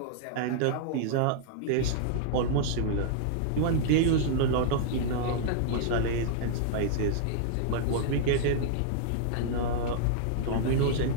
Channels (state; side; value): different; both; correlation -0.02